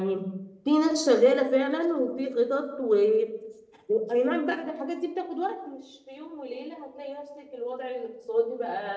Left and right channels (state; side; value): identical; both; correlation 1.00